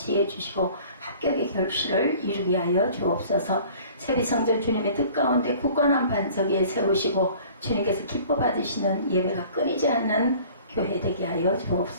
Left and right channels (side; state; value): both; inverted; correlation -0.49